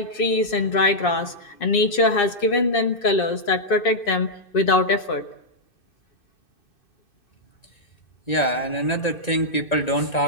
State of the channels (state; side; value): late; right; 2.6 ms